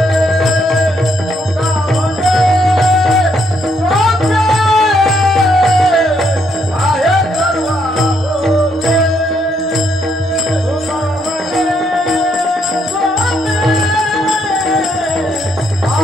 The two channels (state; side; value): normal; both; correlation 0.73